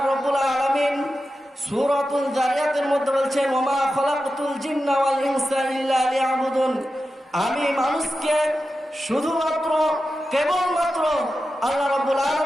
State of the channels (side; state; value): both; normal; correlation 0.91